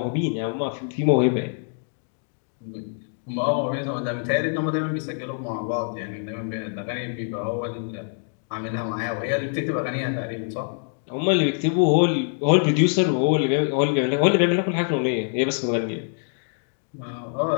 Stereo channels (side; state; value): right; silent; 62 dB below the other